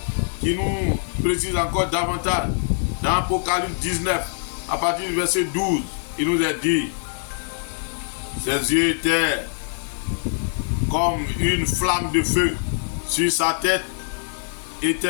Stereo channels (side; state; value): right; silent; 59 dB below the other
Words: qui nous précisent encore davantage. Dans Apocalypse 19, à partir du verset 12, il nous est dit, ses yeux étaient comme une flamme de feu. Sur sa tête